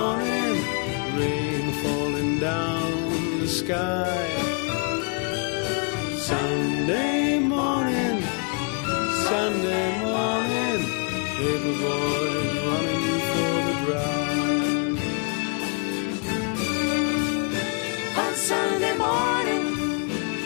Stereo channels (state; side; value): quieter; right; 37.0 dB